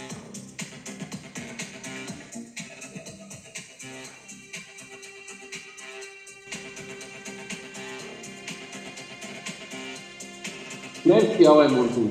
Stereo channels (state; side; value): identical; both; correlation 1.00